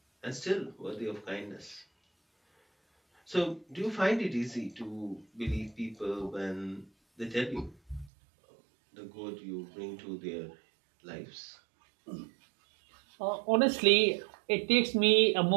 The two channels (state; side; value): drops out; left; at 8.1 s